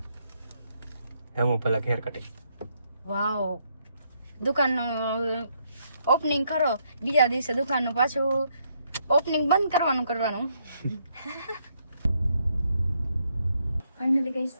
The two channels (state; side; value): inverted; both; correlation -0.75